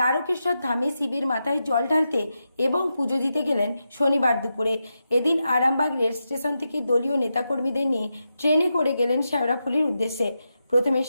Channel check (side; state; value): both; inverted; correlation -0.88